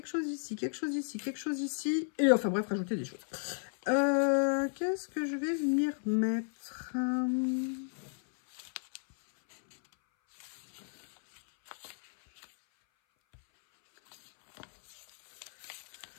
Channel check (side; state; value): right; silent; 55 dB below the other